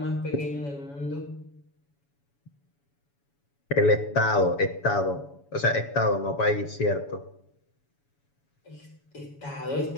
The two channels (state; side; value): late; right; 7.1 ms